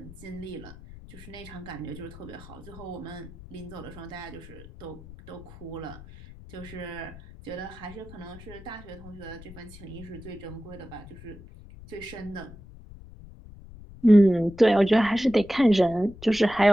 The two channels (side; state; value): left; noise; rumble, 17 dB below the sound